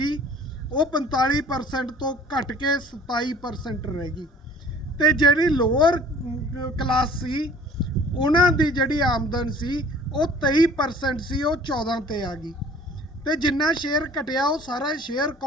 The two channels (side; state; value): both; normal; correlation 0.50